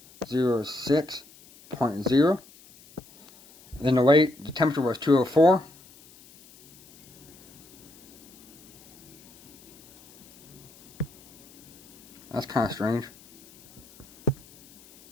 Then the temperature was 204. That's kind of strange.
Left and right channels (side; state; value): left; noise; hiss, 23 dB below the sound